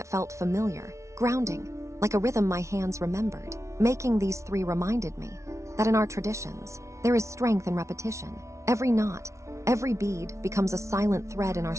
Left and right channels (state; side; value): late; left; 0.14 ms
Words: felt familiar, grounding, like a rhythm my hands remembered. Making these 3 reminded me that in our traditions, there is strength in repetition. Every knot, every bead becomes a silent thread in our